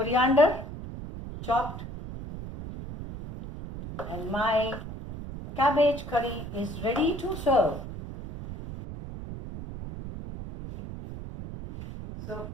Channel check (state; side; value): noise; right; rumble, 10 dB below the sound